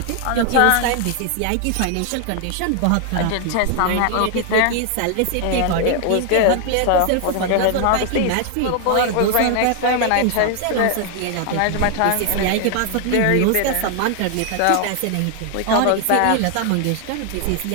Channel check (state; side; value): different; both; correlation 0.00